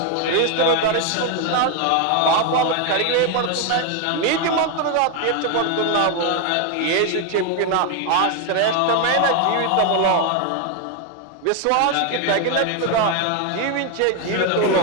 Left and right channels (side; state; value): both; different; correlation 0.01